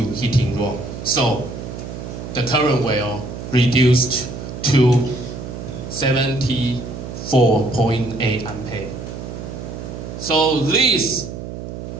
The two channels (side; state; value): right; noise; hum, 9 dB below the sound